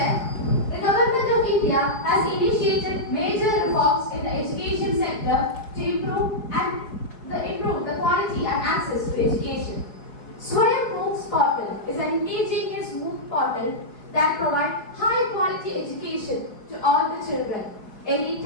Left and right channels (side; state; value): right; late; 4.8 ms